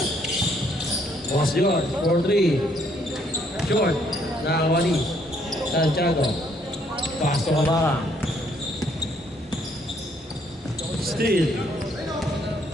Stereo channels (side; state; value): both; normal; correlation 0.68